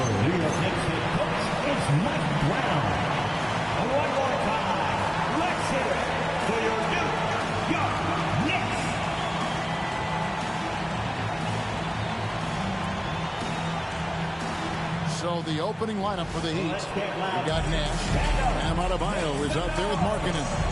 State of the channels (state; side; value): identical; both; correlation 1.00